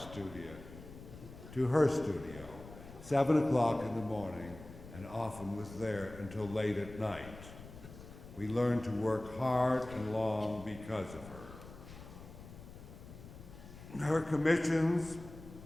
to her studio, 7 o'clock in the morning, and often was there until late at night. We learned to work hard and long because of her. Her commissions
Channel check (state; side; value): noise; left; rumble, 15 dB below the sound